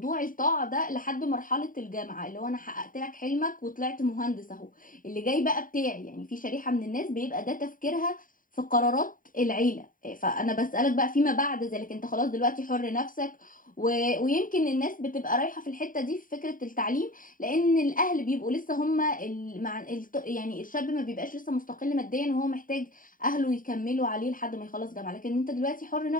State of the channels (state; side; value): late; right; 0.39 ms